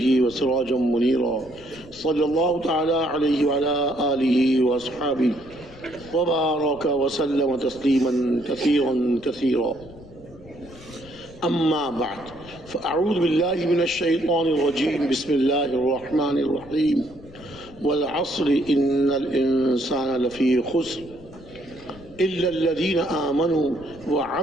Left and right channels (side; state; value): left; noise; rumble, 20 dB below the sound